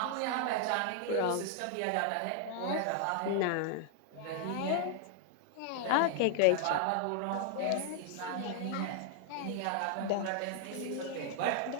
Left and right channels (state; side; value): different; both; correlation 0.00